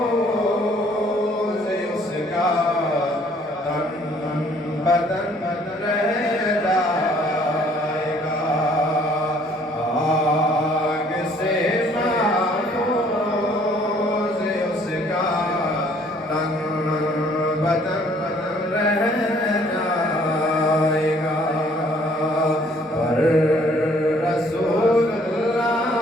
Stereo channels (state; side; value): normal; both; correlation 0.60